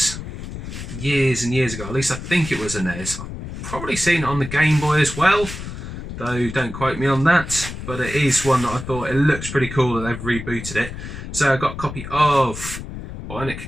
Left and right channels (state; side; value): noise; left; rumble, 9 dB below the sound